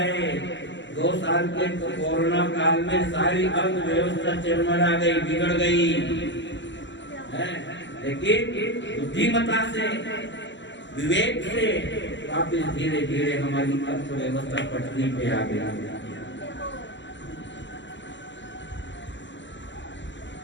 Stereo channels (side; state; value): right; late; 0.54 ms